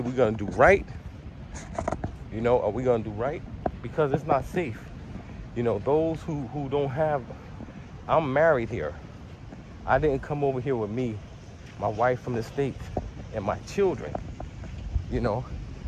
gonna do right. You know, are we gonna do right? Because it's not safe. You know, those who don't have, I'm married here. I didn't come over here with me, my wife from the States, and my children. You know,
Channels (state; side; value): identical; both; correlation 1.00